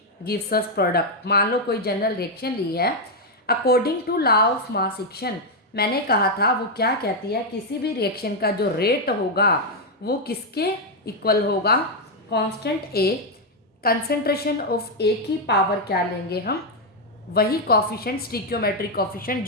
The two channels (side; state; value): both; normal; correlation 0.01